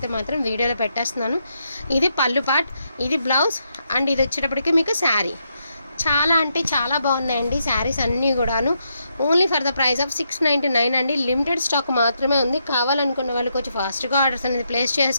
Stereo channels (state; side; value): inverted; both; correlation -0.79